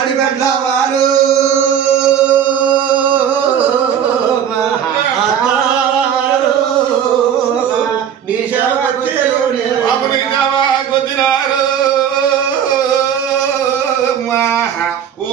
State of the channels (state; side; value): quieter; left; 8.8 dB